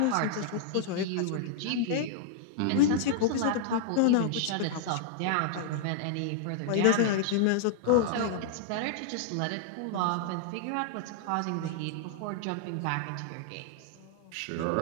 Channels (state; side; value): different; both; correlation -0.01